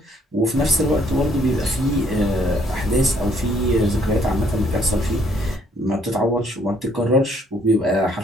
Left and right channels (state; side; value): normal; both; correlation 0.66